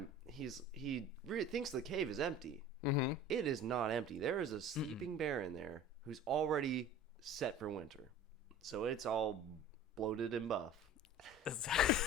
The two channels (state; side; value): normal; both; correlation 0.40